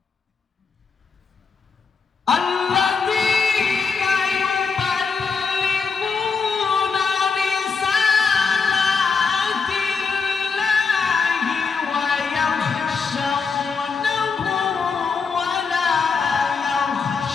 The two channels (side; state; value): right; quieter; 5.2 dB